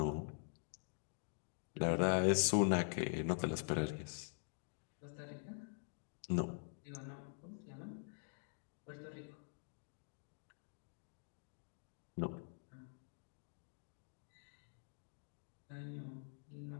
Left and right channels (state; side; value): silent; right; digital silence